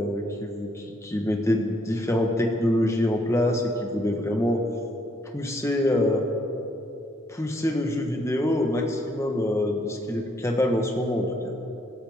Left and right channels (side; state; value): both; normal; correlation 0.70